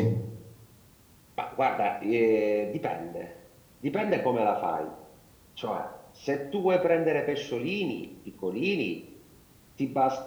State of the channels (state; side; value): identical; both; correlation 1.00